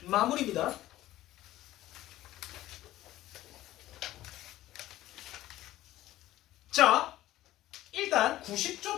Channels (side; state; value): right; quieter; 15.1 dB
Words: 마무리입니다. 자, 일단